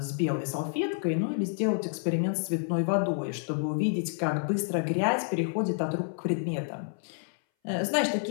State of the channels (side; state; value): right; silent; 58 dB below the other